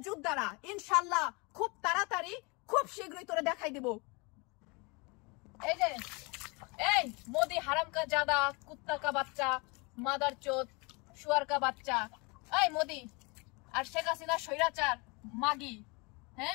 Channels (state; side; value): quieter; right; 29.0 dB